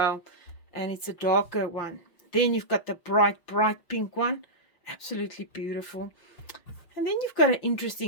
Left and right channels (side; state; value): right; late; 5.9 ms